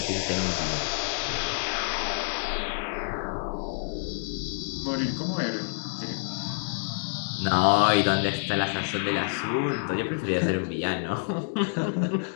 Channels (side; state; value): right; silent; digital silence